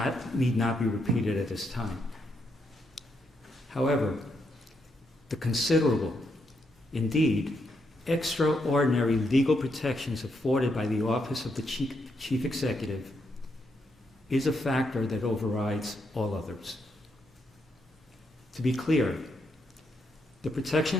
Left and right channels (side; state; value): both; normal; correlation 0.79